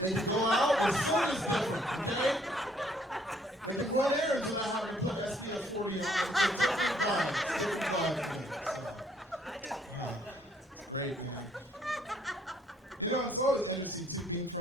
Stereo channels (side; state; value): both; normal; correlation 0.65